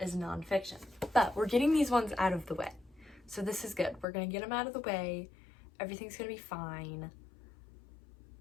nonfiction. But we're getting these ones out of the way. So this is good. We're gonna get them out of the way. Everything's gonna be fine.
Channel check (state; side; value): drops out; right; at 4.0 s